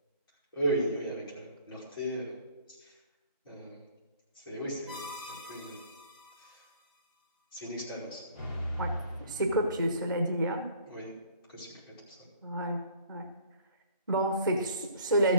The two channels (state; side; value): inverted; both; correlation -0.55